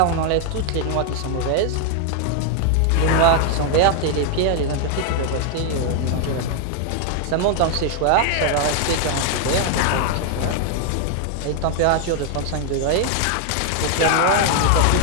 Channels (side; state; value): both; different; correlation 0.00